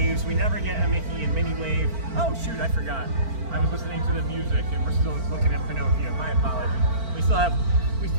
We never get a Mickey and Minnie wave. Oh, shoot, I forgot. I was listening to the music and we're still looking at Pinocchio. My apologies. We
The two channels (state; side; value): late; left; 4.4 ms